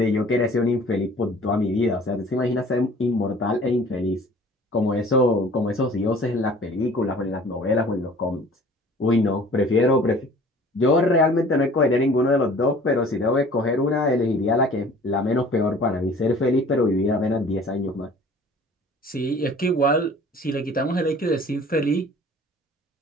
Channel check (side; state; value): both; normal; correlation 0.49